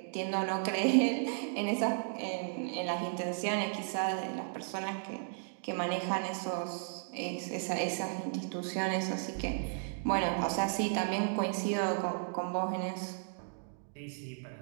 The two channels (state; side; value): silent; left; digital silence